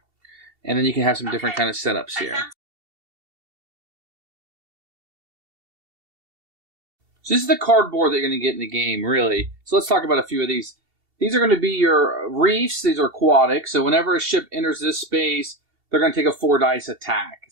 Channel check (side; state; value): left; late; 2.7 ms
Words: And then you can have some different kind of setups here. So this is the cardboard that you're going to get in the game, really. So let's talk about a few of these. These are going to be your reefs. These are aquatic. So whenever a ship enters this space, they're going to take a 4-dice attack.